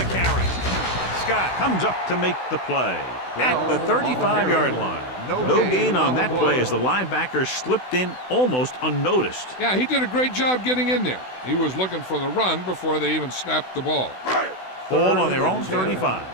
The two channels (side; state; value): right; late; 16 ms